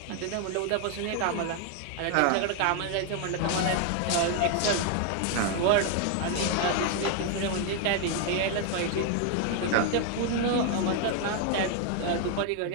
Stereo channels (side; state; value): both; different; correlation 0.00